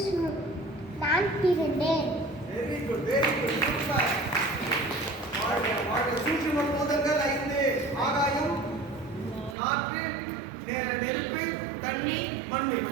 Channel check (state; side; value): drops out; left; at 9.6 s